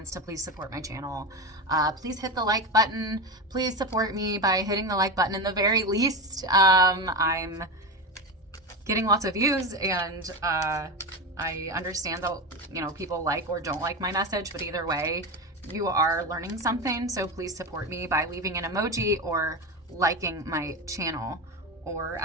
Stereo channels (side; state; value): both; normal; correlation 0.19